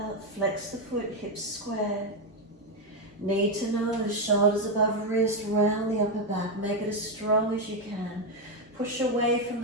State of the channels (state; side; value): normal; both; correlation 0.06